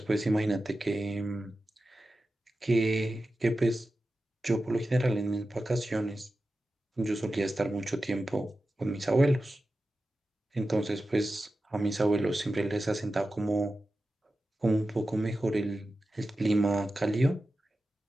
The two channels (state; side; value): normal; both; correlation 0.93